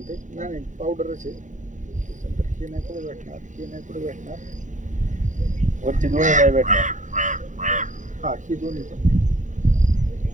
नाही पावडरच आहे त्याच्यानंतर हे नाही पुढे भेटणार हे नाही पुढे भेटणार वरची दोन्ही नाही भेटणार हा ही दोन्ही पण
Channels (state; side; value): late; left; 0.36 ms